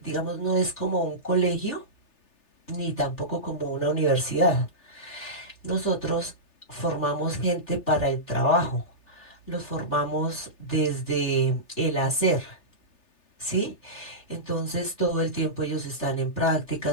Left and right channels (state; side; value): late; right; 3.3 ms